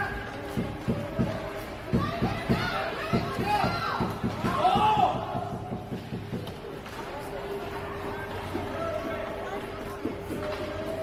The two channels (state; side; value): identical; both; correlation 1.00